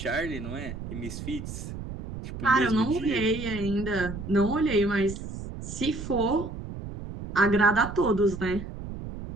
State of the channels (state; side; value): noise; right; rumble, 9 dB below the sound